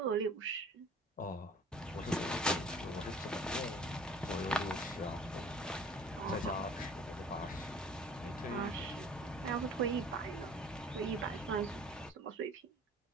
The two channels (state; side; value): normal; both; correlation 0.49